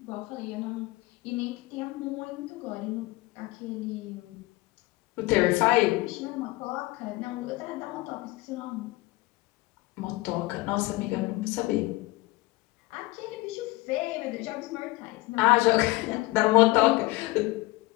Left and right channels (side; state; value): right; quieter; 20.9 dB